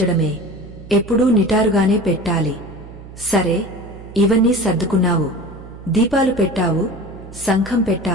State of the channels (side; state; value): right; noise; hum, 16 dB below the sound